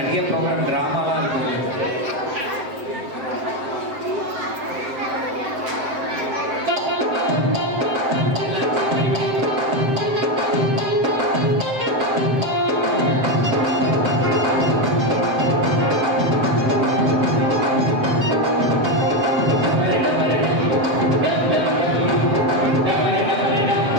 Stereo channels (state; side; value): late; left; 7.7 ms